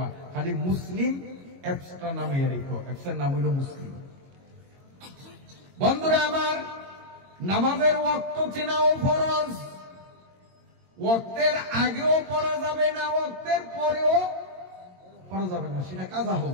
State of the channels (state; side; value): late; left; 22 ms